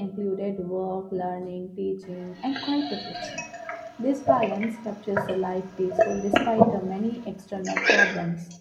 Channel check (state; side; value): identical; both; correlation 1.00